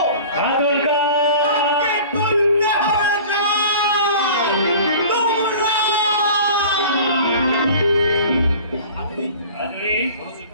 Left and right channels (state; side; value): inverted; both; correlation -0.42